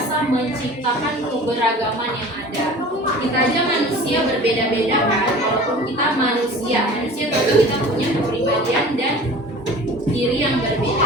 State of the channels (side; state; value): both; normal; correlation 0.42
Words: menciptakan keberagaman yang ada. Kita aja manusia berbeda-beda kan, walaupun kita manusia tapi kita punya kepribadian dan diri yang